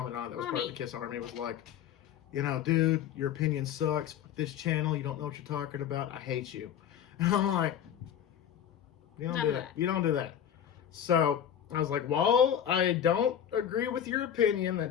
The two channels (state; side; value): quieter; right; 9.4 dB